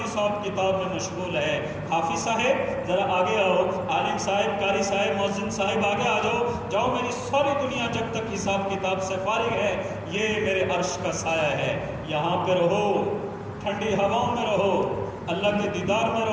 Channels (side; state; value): both; identical; correlation 1.00